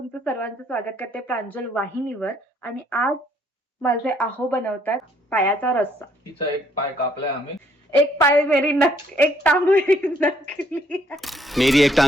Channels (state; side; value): normal; both; correlation 0.66